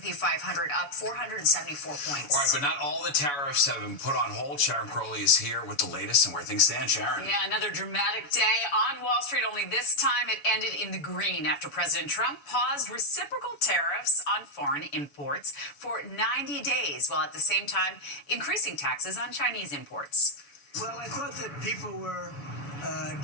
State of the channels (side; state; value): right; late; 7.0 ms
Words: 500 up 474 points. All right, but not all the tariffs have been put on hold. Sharon Crowley is here with the latest and where things stand. Sharon. Yeah, another dramatic day on Wall Street. Only this time it ended in the green after President Trump paused reciprocal tariffs on foreign imports for 90 days, while at the same time increasing taxes on Chinese imports. Well, I thought that people were